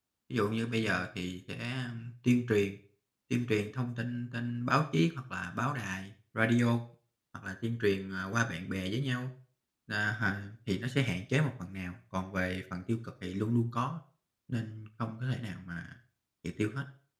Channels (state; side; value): identical; both; correlation 1.00